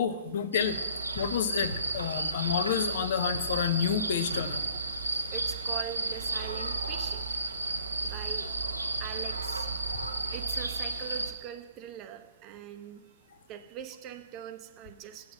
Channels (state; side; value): inverted; both; correlation -0.55